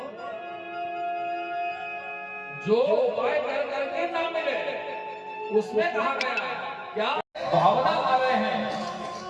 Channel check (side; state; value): both; identical; correlation 1.00